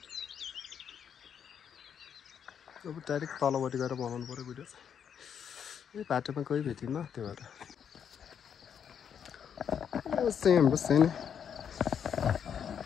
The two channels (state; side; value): quieter; right; 8.0 dB